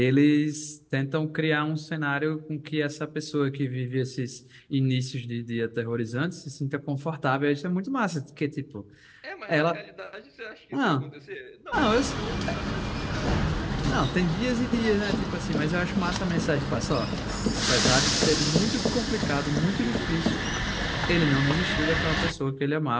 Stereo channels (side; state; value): both; identical; correlation 1.00